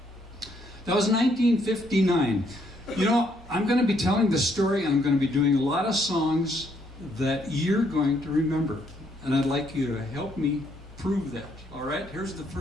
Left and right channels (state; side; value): normal; both; correlation 0.71